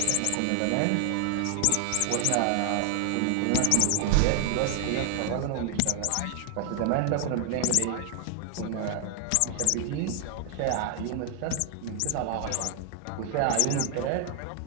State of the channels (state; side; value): different; both; correlation 0.00